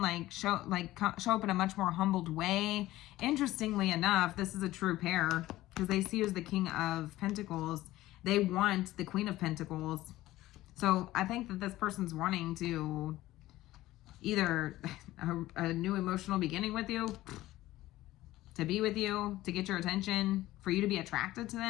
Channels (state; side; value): quieter; right; 16.4 dB